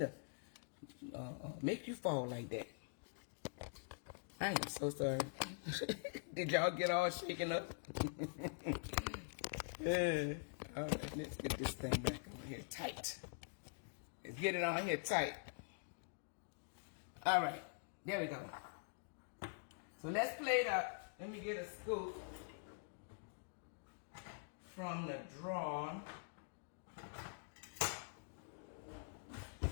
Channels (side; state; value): right; silent; digital silence